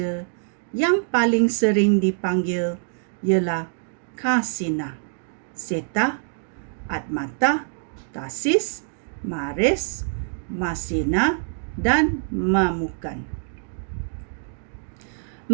yang paling sering dipanggil ialah Kasina, Seta, Atmata, Tasis, Mares, Masina dan Mamukan.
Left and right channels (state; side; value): silent; left; digital silence